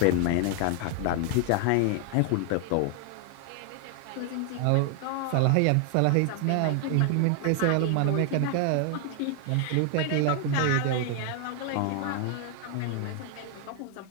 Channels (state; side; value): different; both; correlation 0.00